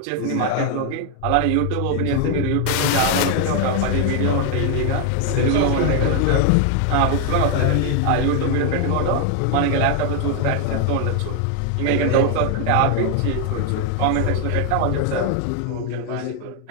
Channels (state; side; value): different; both; correlation 0.00